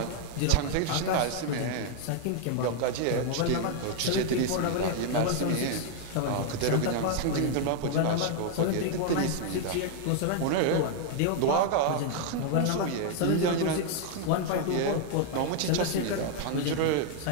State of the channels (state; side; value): different; both; correlation 0.00